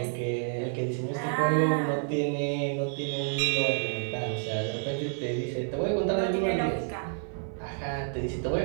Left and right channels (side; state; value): left; silent; 58 dB below the other